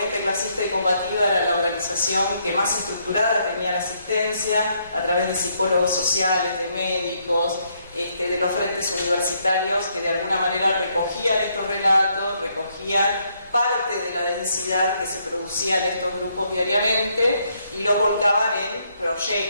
clasista y combativa era la organización que más estructurada tenía la asistencia a través de psicólogos sociales, de médicos, de los frentes universitarios que de alguna manera recogían estos relatos, recogían parte de la densidad que se producía en estos grupos diariamente y los volcaban en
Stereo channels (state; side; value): inverted; both; correlation -0.73